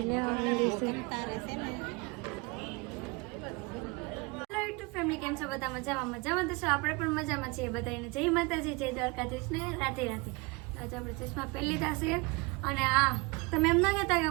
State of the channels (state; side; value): quieter; left; 27.1 dB